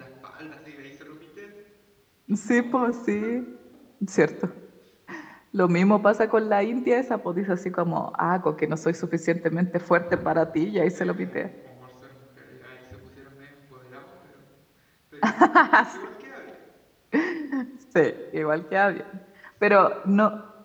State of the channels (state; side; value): identical; both; correlation 1.00